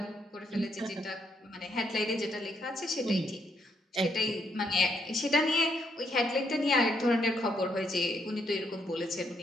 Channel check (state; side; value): normal; both; correlation 0.74